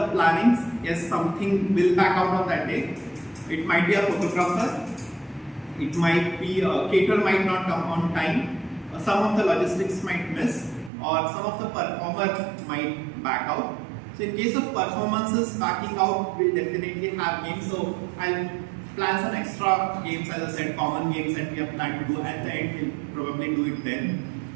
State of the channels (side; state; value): left; drops out; at 10.9 s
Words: plannings, yes, something will back out on that day. It might be a photographer. It might be a caterer might not come on time. Some of the logistics might miss, or some of the performer might back out. So in case of performances backing out, we'll definitely have games. So I'll plan some extra games, as I said, common games that we have planned to do. At the end, we'll probably do it then.